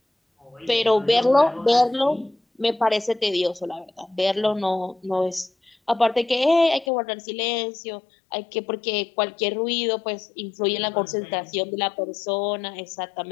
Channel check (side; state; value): right; drops out; at 6.9 s